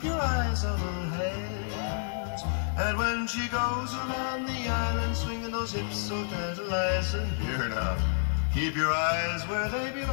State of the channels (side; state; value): right; silent; digital silence